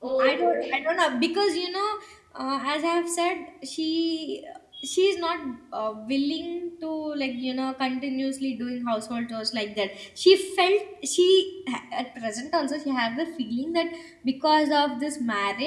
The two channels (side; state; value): both; identical; correlation 1.00